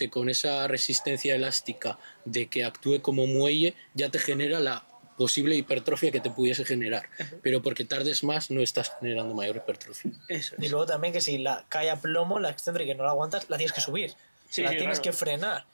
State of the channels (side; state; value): both; inverted; correlation -1.00